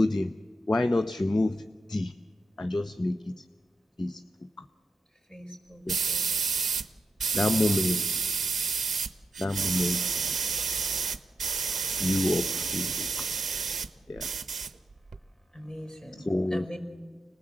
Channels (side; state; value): both; normal; correlation 0.86